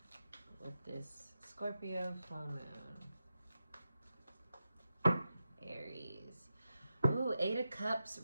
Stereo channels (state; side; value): inverted; both; correlation -0.89